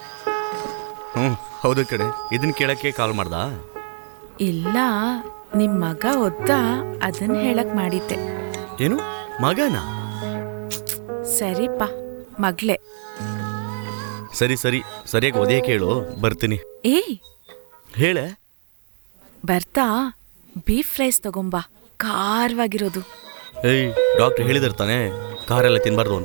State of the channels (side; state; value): left; silent; digital silence